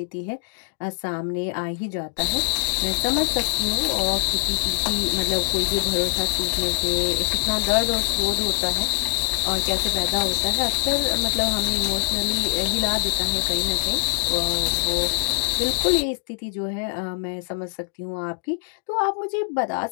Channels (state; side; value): silent; right; digital silence